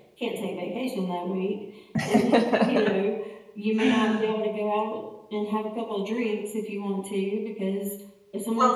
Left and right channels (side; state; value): both; identical; correlation 1.00